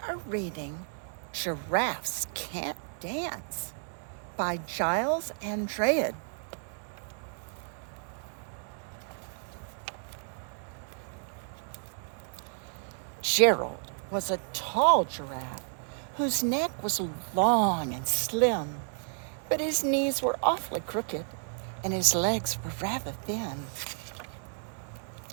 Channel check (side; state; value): left; silent; 57 dB below the other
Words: reading Giraffes Can't Dance by Giles and Andreae. Gerald was a tall giraffe whose neck was long and slim, but his knees were awfully crooked and his legs were rather thin.